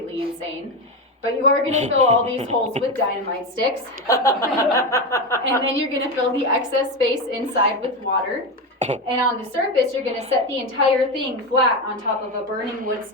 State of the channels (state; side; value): normal; both; correlation 0.16